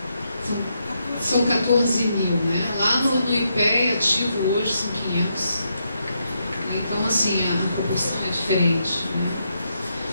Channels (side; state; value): both; inverted; correlation -0.80